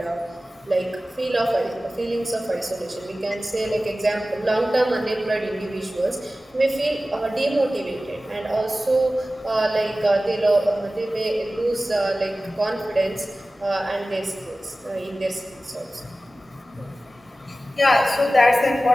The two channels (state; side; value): normal; both; correlation 0.96